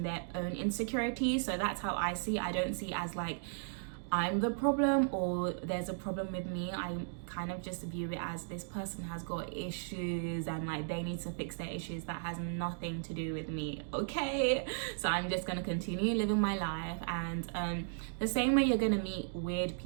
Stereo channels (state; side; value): silent; left; digital silence